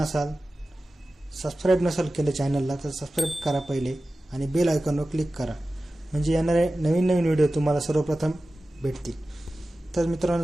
सबस्क्राईब नसाल केलं चॅनलला तर सबस्क्राईब करा पहिले आणि बेल आयकॉनवर क्लिक करा, म्हणजे येणारे नवीन व्हिडिओ तुम्हाला सर्वप्रथम भेटतील. तर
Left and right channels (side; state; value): both; normal; correlation 0.95